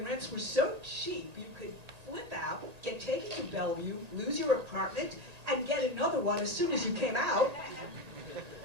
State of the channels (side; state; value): left; late; 1.8 ms